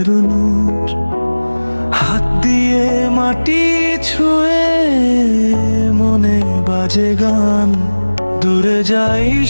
নূর। হাত দিয়ে মাটি ছুঁয়ে মনে বাজে গান, দূরে যাই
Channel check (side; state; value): both; inverted; correlation -1.00